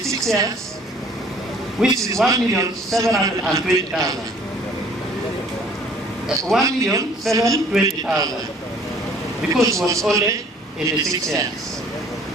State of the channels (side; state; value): both; normal; correlation 0.55